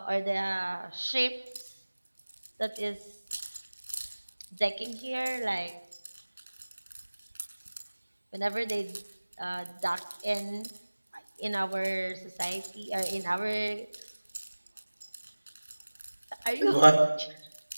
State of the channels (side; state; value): both; inverted; correlation -1.00